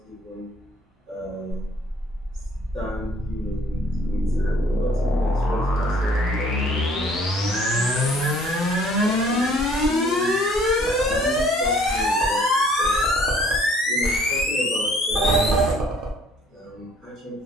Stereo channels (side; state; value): both; normal; correlation 0.58